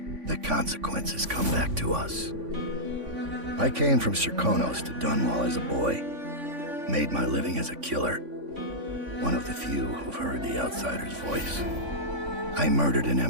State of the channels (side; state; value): left; late; 3.5 ms